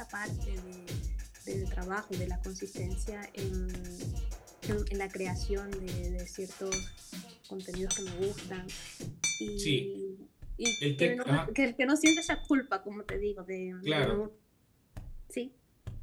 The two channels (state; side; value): identical; both; correlation 1.00